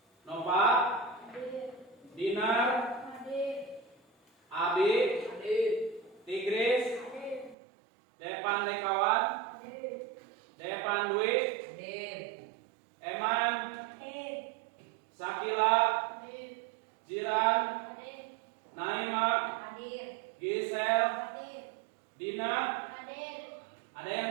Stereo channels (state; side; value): drops out; left; at 7.6 s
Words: Nova Hadir. Dinar Hadir. Abi Hadir. Tigris Hadir. Depan Dekawan Hadir. Depan Dwi Hadir. Eman Hadir. Sakila Hadir. Jiran Hadir. Naima Hadir. Gisel Hadir. Dina. Hadir. Ada yang